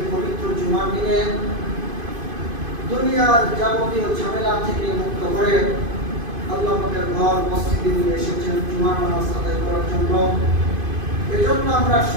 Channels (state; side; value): late; left; 2.5 ms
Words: পবিত্র জুমার দিনে দুনিয়ার যাবতীয় ঝামেলা থেকে মুক্ত করে আল্লাহ পাকের ঘর মসজিদে নিয়ে এসেছেন জুমার নামাজ আদায় করার জন্য। এজন্য আমরা